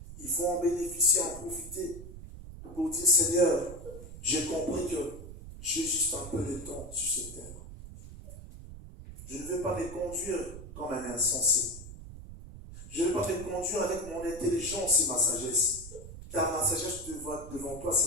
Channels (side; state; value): right; noise; rumble, 13 dB below the sound